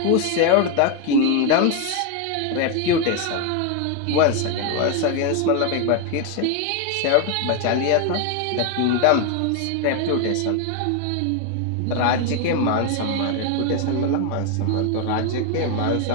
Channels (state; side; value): different; both; correlation 0.01